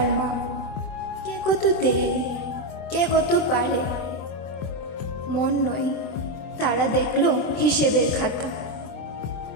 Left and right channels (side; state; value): right; late; 24 ms